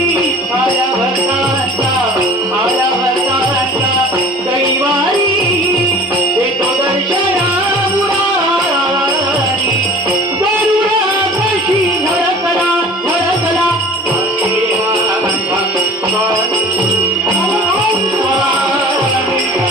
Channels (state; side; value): normal; both; correlation 0.44